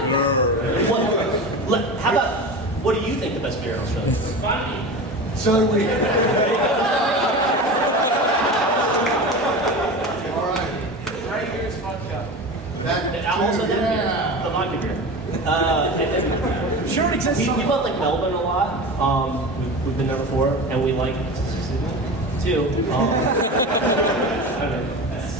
How about, what do you think the best beer in Australia is? Funny. So do we. All right. Right here is vodka. Also that beer, the vodka beer. And then, I'm sure it exists we somewhere. went like Melbourne a lot. We've been there before, and we like too. I don't know.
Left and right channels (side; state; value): both; normal; correlation 0.29